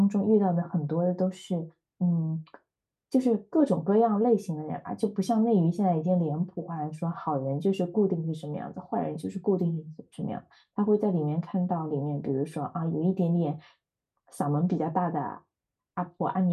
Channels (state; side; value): identical; both; correlation 1.00